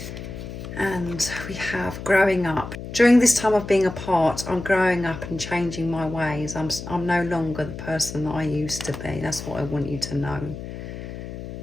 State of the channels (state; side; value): noise; left; hum, 10 dB below the sound